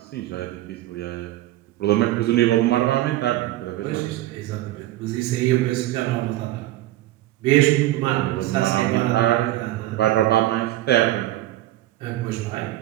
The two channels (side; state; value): left; quieter; 15.5 dB